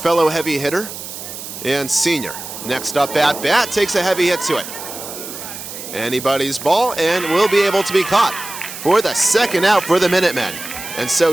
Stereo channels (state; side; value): noise; right; hiss, 10 dB below the sound